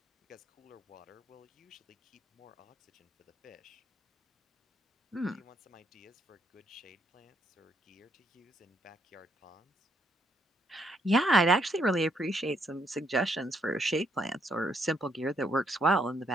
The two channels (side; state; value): both; normal; correlation 0.73